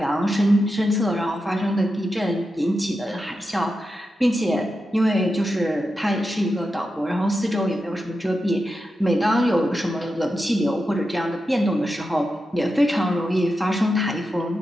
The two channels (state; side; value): normal; both; correlation 0.89